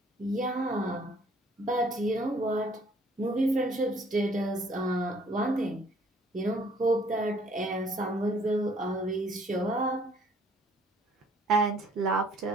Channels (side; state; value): both; normal; correlation 0.60